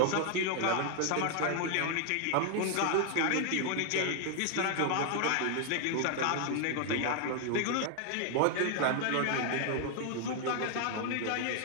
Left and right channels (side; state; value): both; different; correlation 0.00